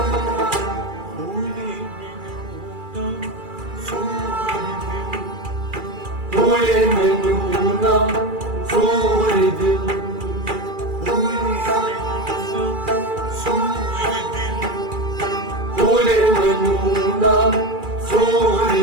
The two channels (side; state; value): left; late; 2.4 ms